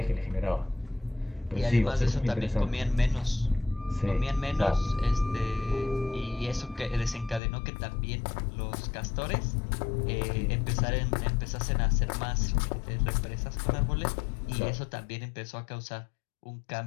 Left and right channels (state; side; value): drops out; right; at 7.4 s